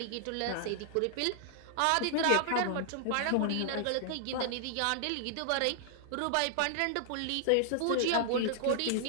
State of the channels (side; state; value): both; different; correlation -0.01